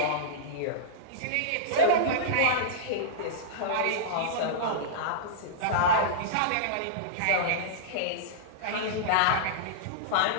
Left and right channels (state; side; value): different; both; correlation -0.03